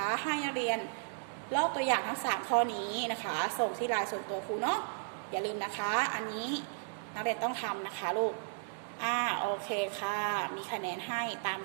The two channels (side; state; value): left; silent; digital silence